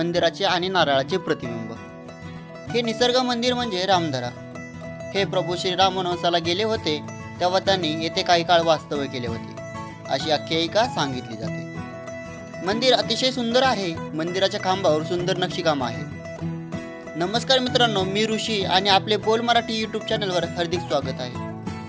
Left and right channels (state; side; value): identical; both; correlation 1.00